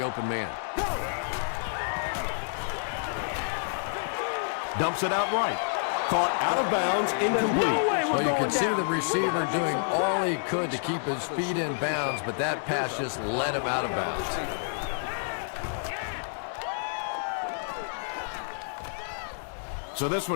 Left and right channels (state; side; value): silent; right; 59 dB below the other